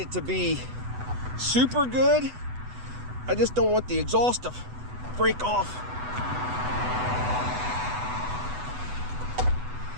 to be super good. I just don't want the exhaust to break off.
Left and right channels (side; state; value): left; late; 8.1 ms